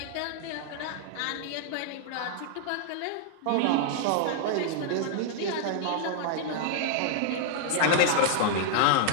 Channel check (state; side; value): different; both; correlation -0.01